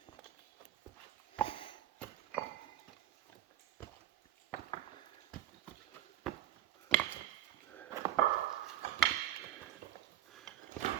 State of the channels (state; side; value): quieter; left; 12.2 dB